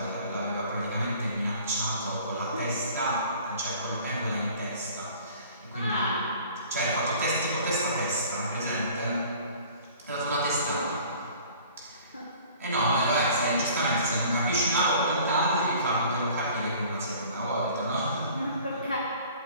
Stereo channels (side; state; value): both; inverted; correlation -0.49